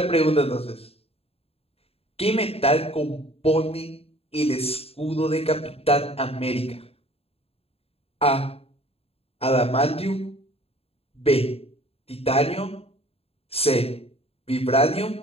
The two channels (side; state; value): right; late; 0.28 ms